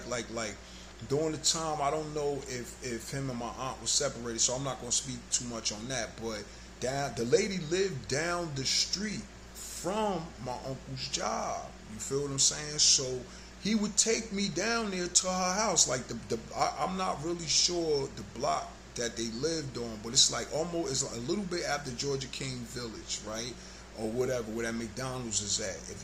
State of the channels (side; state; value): both; identical; correlation 1.00